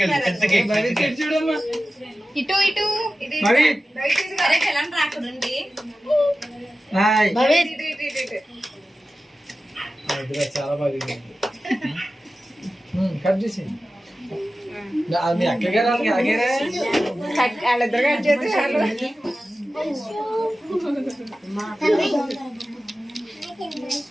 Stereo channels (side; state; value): both; normal; correlation 0.95